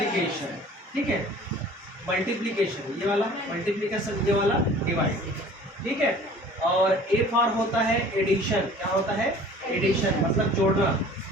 ठीक है, मल्टीप्लिकेशन, ये वाला मल्टीप्लिकेशन, ये वाला डिवाइड, ठीक है। और ए फॉर होता है एडिशन, क्या होता है, एडिशन मतलब जोड़ना,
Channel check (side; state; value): both; normal; correlation 0.47